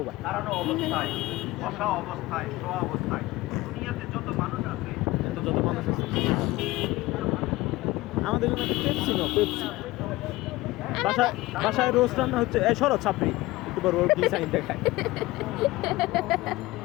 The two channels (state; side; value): quieter; right; 19.2 dB